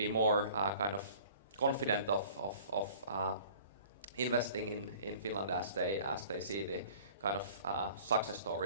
more kind of confident of investing in Finland as they see the kind of success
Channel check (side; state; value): both; inverted; correlation -0.48